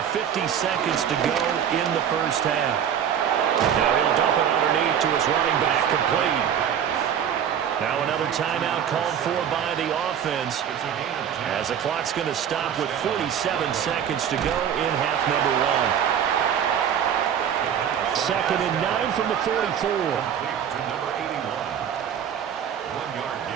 50 seconds to go in the first half. Now he'll dump it underneath to his running back, complete. Now another timeout called for by the offense as the clock's going to stop with 47 seconds to go in half number 1. 2nd and 9 from the 44.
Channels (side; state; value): left; quieter; 8.8 dB